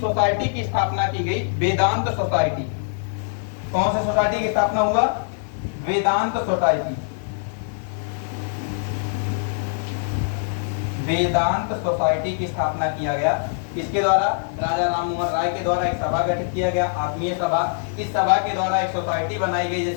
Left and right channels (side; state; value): right; silent; digital silence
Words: की स्थापना की गई, वेदांत सोसाइटी। कौन सी सोसाइटी की स्थापना हुआ? वेदांत सोसाइटी। वेदांत सोसाइटी की स्थापना किया गया। इसके द्वारा राजा राममोहन राय के द्वारा एक सभा गठित किया गया, आत्मीय सभा। इस सभा के द्वारा एक सोसाइटी बनाई गई